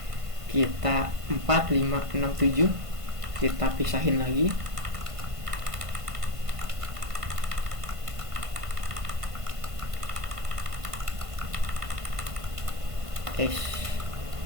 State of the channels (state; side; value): late; left; 1.5 ms